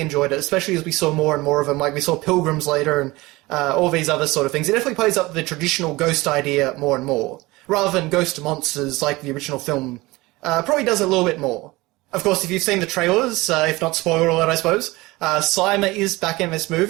it, especially as we saw more and more of them. Like, we saw pilgrims later and all these other sort of things. It definitely plays up the traditional ghost idea more and more, rather than ghost monsters like the original film. Probably does a little bit more. Of course, if you've seen the trailers, if not spoiler alert, I suppose, Slimer is back in this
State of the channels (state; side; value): quieter; left; 21.2 dB